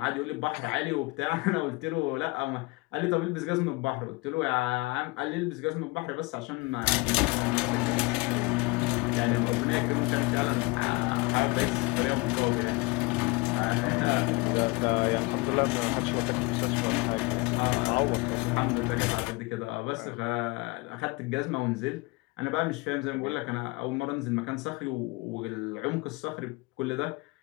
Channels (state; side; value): quieter; right; 25.1 dB